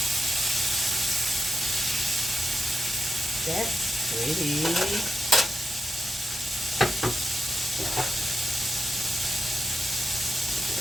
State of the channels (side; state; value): both; normal; correlation 0.88